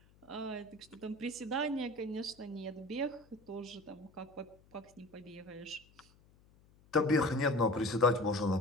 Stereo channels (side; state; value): left; noise; hum, 28 dB below the sound